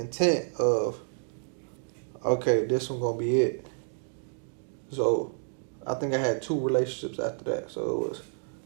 of, okay, this one gonna be it. So I think I had 2 relationships after that. So it was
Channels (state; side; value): silent; left; digital silence